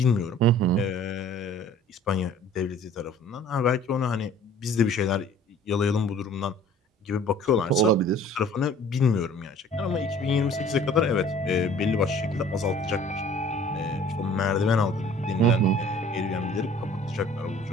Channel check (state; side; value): normal; both; correlation 0.51